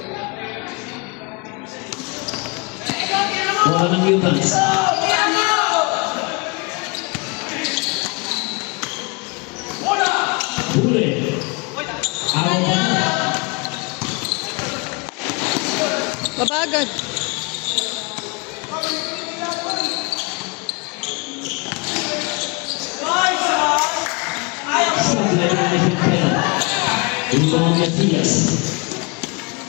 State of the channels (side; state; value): right; quieter; 29.8 dB